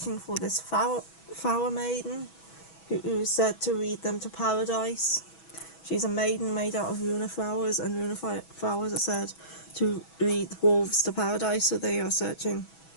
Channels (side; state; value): right; late; 6.1 ms